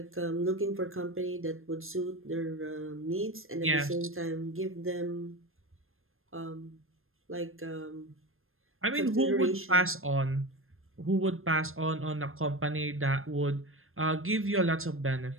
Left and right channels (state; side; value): late; left; 0.60 ms